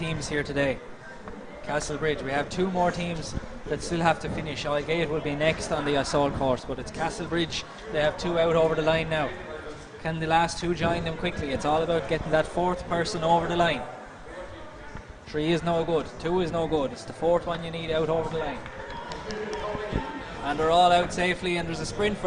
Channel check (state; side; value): identical; both; correlation 1.00